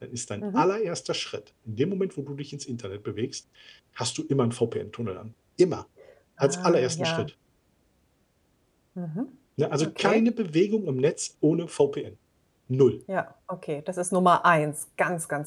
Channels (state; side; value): identical; both; correlation 1.00